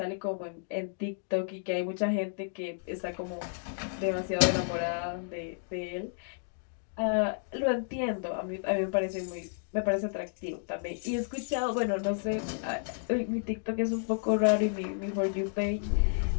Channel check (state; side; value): silent; right; digital silence